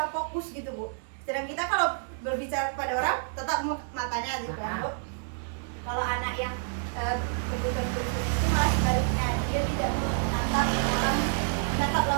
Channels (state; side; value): silent; left; digital silence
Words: fokus gitu Bu. Sedang kita kalau berbicara kepada orang tetap matanya gitu ya Bu. Kalau anak yang kebutuhan khusus itu malah sebaliknya, dia tidak menatap